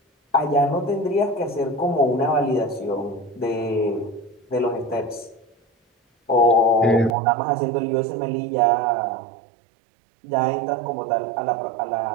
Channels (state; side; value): drops out; left; at 7.2 s